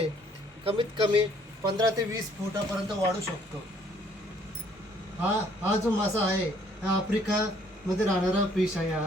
कमीत कमी 15 ते 20 फुटापर्यंत वाढू शकतो. हा जो मासा आहे हा आफ्रिकामध्ये राहणारा फिश आहे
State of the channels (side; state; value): both; normal; correlation 0.63